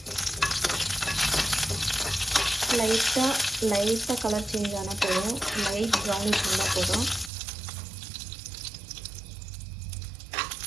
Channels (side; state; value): left; drops out; at 7.3 s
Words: லைட்டாக கலர் சேஞ்ச் ஆனால் போதும். லைட் ப்ரௌனிஷ் இருந்தால் போதும்.